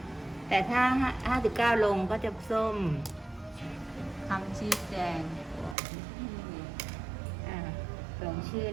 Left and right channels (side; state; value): left; drops out; at 5.8 s